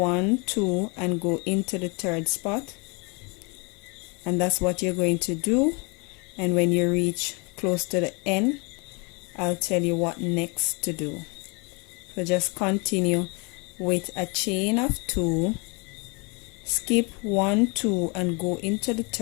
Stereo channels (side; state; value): right; quieter; 31.3 dB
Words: 2, and go into the third spot. And that's what you're going to do. And when you reach close to the end, I'll tell you what next to do. So just continue with a chain of 2, skip 1, 2, and go into the